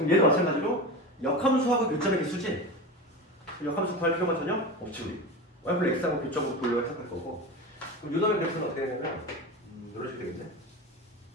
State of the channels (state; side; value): normal; both; correlation 0.26